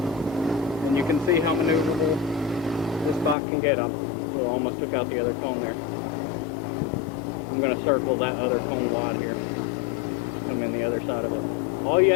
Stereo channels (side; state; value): right; drops out; at 3.4 s